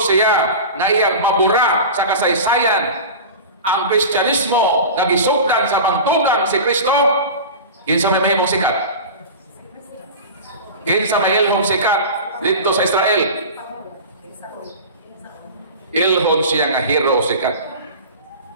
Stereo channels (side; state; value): both; inverted; correlation -0.31